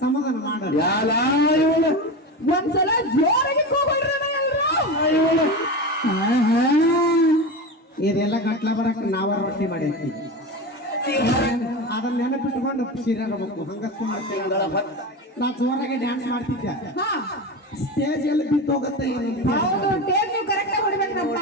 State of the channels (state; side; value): normal; both; correlation 0.24